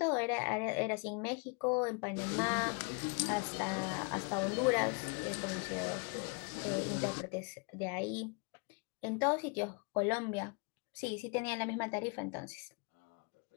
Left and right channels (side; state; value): right; quieter; 34.9 dB